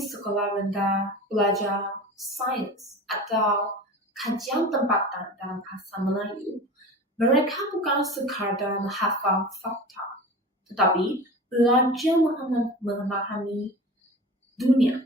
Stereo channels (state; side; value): normal; both; correlation 0.34